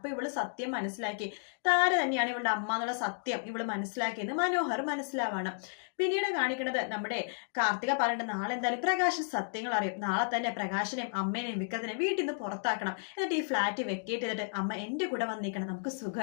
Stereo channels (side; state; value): right; silent; digital silence